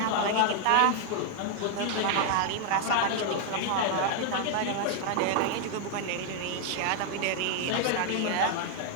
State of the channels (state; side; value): different; both; correlation 0.00